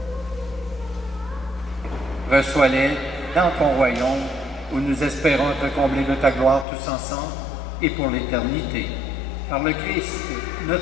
Reçois-les dans ton royaume, où nous espérons te combler de ta gloire tous ensemble et pour l'éternité. Par le Christ,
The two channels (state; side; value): drops out; right; at 6.7 s